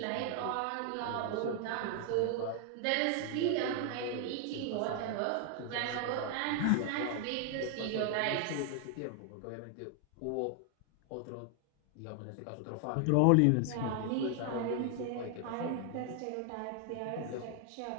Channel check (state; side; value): different; both; correlation 0.00